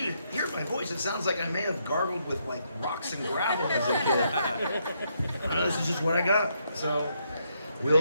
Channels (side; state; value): both; inverted; correlation -0.76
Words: hear my voice, it sounds like I may have gargled with like rocks and gravel as a kid. I don't know, this is just what I got. So